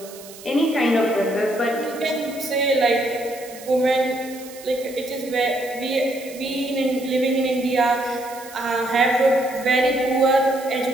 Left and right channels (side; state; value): right; noise; hiss, 18 dB below the sound